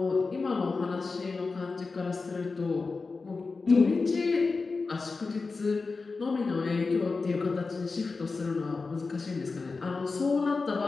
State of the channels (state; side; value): quieter; right; 4.2 dB